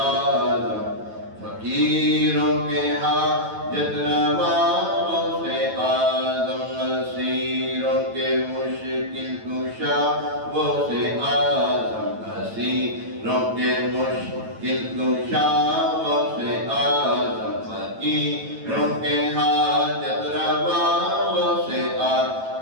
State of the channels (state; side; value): late; left; 9.1 ms